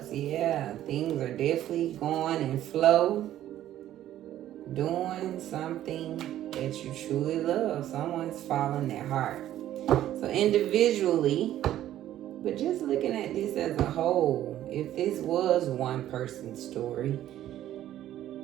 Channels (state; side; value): quieter; left; 12.6 dB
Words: Yeah, things are definitely going in flow. Doing something that you truly love. Someone's following their heart. So individually, but just looking at this as a whole, if this was one person's story,